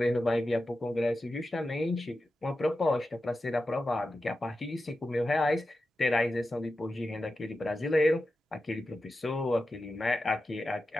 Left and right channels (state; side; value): normal; both; correlation 0.92